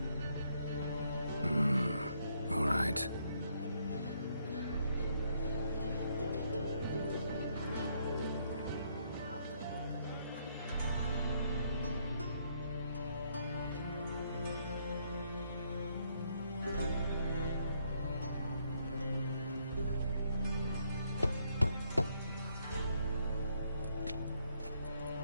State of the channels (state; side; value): inverted; both; correlation -0.72